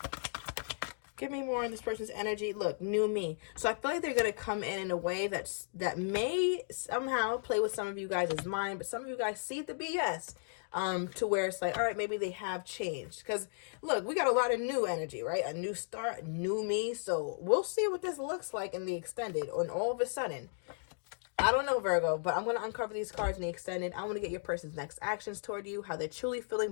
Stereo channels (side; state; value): right; silent; digital silence